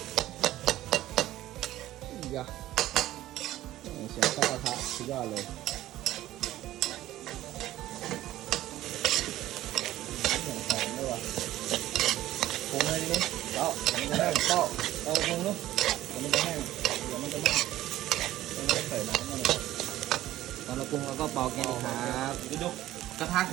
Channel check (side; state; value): left; quieter; 14.7 dB